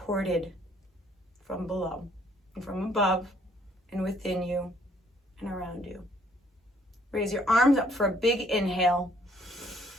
from below and from above and within you and around you. Raise your arms up for a big inhale.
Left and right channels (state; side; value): normal; both; correlation 0.64